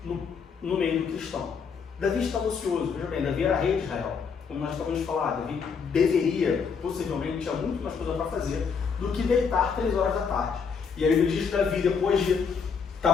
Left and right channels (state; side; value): quieter; right; 5.9 dB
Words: no meio do cristão. Davi estava ocioso. Veja bem, Davi era rei de Israel. Como nós acabamos de falar, Davi deveria, possivelmente, tinha muito mais coisa para fazer do que deitar 3 horas da tarde. E aí ele diz que Davi, depois de